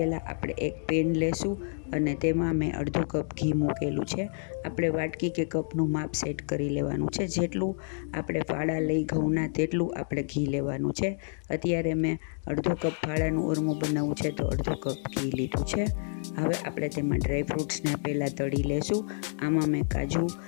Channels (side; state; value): right; silent; digital silence